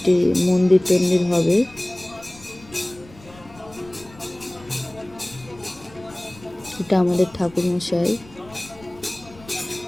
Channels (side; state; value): left; noise; rumble, 22 dB below the sound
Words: মন্দির টন্দির হবে। এটা আমাদের ঠাকুরমশাই।